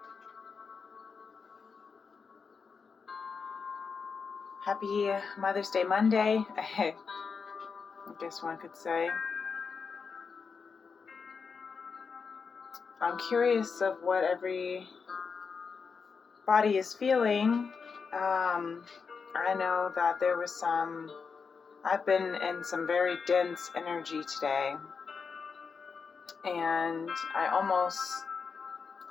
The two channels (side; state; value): right; quieter; 5.4 dB